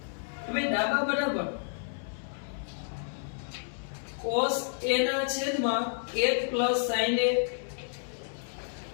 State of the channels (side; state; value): right; silent; 57 dB below the other